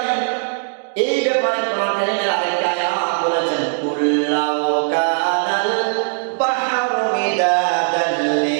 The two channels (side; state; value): left; silent; digital silence